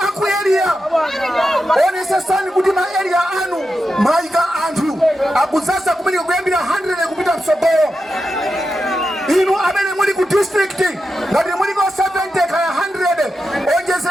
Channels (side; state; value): both; normal; correlation 0.89